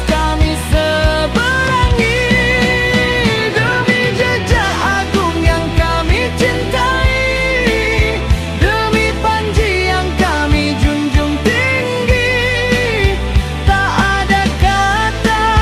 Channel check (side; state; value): both; identical; correlation 1.00